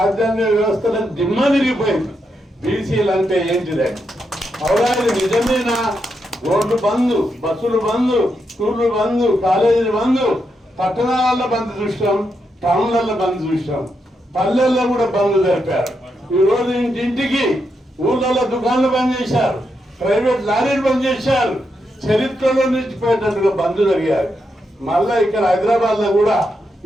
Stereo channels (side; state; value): both; normal; correlation 0.83